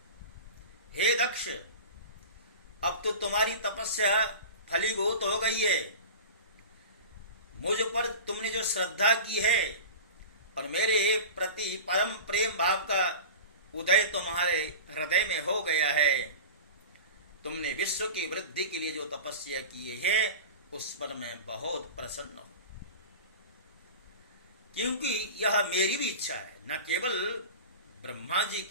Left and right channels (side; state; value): both; inverted; correlation -0.32